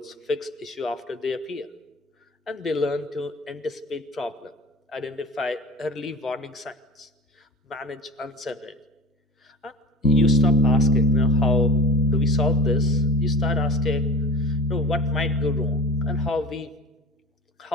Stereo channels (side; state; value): both; normal; correlation 0.32